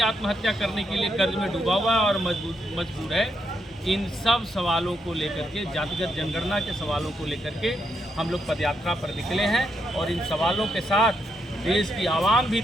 आत्महत्या करने के लिए कर्ज में डूबा हुआ है और मजबूर है। इन सब सवालों को लेकर के, जातिगत जनगणना के सवालों को लेकर के हम लोग पदयात्रा पर निकले हैं और इन सवालों के साथ देश की आवाम भी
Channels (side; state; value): both; normal; correlation 0.80